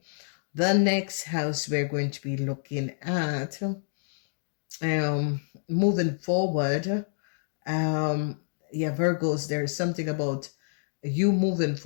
the next house we're going to be looking at, moving forward, yeah, Virgos, there's something about you moving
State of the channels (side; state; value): right; silent; digital silence